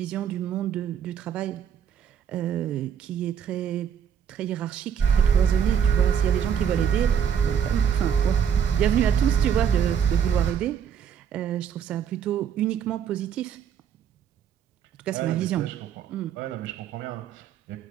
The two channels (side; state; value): left; quieter; 8.1 dB